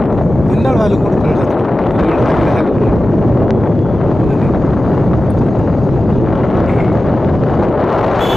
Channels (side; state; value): both; normal; correlation 0.94